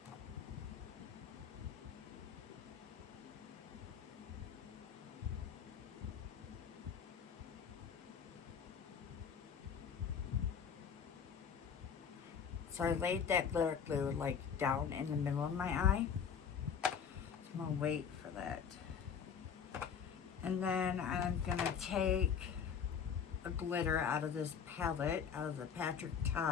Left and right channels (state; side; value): quieter; right; 7.1 dB